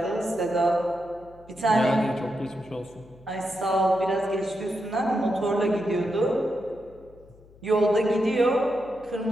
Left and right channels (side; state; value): left; noise; hum, 25 dB below the sound